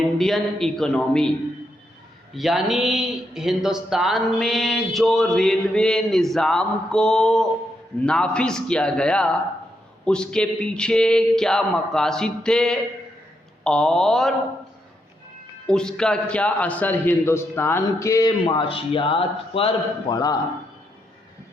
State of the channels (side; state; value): both; normal; correlation 0.80